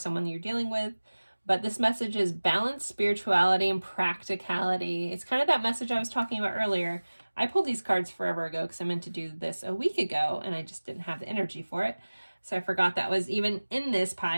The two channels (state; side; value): inverted; both; correlation -1.00